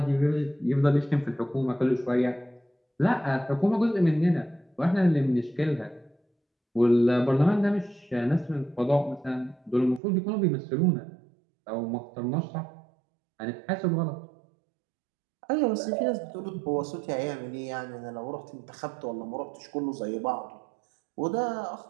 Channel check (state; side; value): drops out; left; at 10.0 s